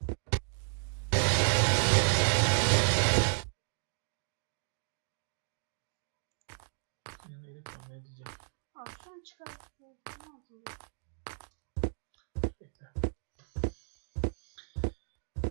Yani öyle tahmin edeceğim. Abi şunu çıkar. Ne yapayım? Bekle.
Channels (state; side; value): silent; left; digital silence